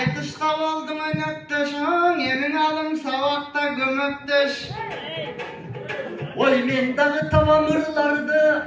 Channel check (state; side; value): identical; both; correlation 1.00